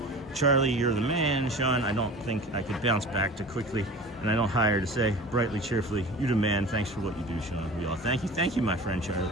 Charlie, you're the man. Sean, I don't think I could bounce back too quickly. And I don't hire to say brightly, cheerfully, you the man. Thanks for what you do, Sean. We all thank you. Thank you, my friend Charlie.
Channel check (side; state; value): both; normal; correlation 0.38